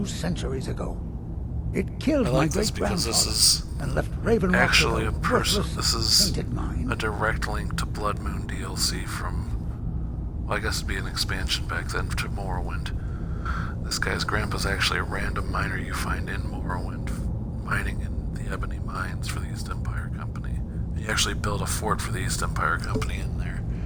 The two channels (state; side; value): identical; both; correlation 1.00